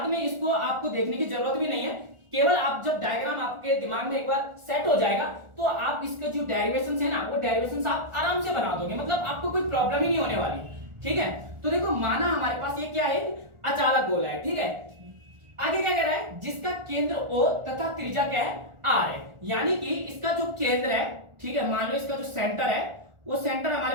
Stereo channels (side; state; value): left; late; 1.4 ms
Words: में इसको आपको देखने की जरूरत भी नहीं है, केवल आप जब डायग्राम आपके दिमाग में एक बार सेट हो जाएगा तो आप इसके जो डेरिवेशंस है ना, वो डेरिवेशंस आप आराम से बना दोगे, मतलब आपको कोई प्रॉब्लम ही नहीं होने वाली, ठीक है। तो देखो माना हमारे पास ये क्या है, अचालक गोला है, ठीक है। आगे क्या कह रहा है, जिसका केंद्र O तथा त्रिज्या क्या है, R है, यानी कि इसका जो केंद्र है, ठीक है, मान लो इसका जो सेंटर है, वो सेंटर